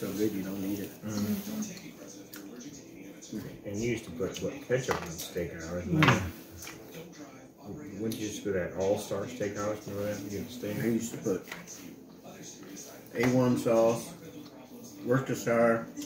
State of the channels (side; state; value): both; identical; correlation 1.00